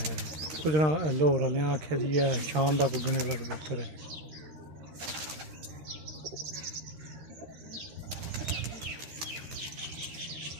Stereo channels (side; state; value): left; late; 13 ms